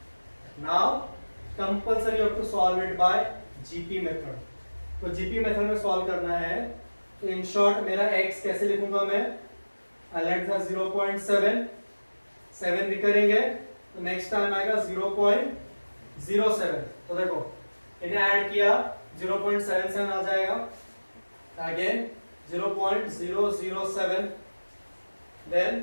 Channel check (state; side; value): inverted; both; correlation -1.00